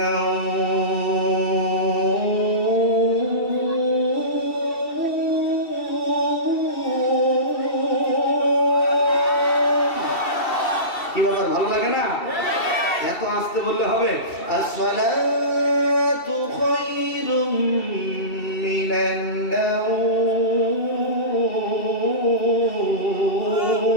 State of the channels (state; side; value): late; right; 2.7 ms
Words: নাওম, কি ব্যাপার, ভালো লাগে না? এত আস্তে বললে হবে? আসসালাতু খায়রুম মিনান নাওম,